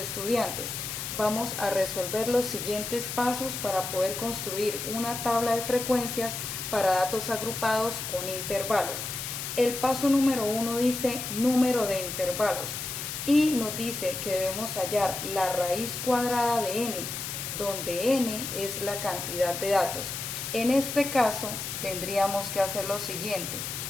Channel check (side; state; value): left; noise; hiss, 5 dB below the sound